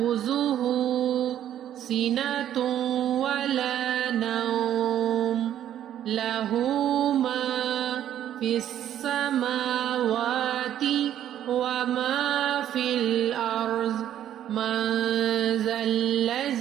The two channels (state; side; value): quieter; left; 11.0 dB